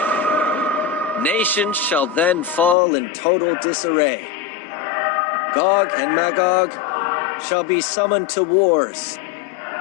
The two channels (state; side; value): drops out; right; at 2.8 s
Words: Nations shall then fall in total disarray. Gog and Magog shall be summoned to wars,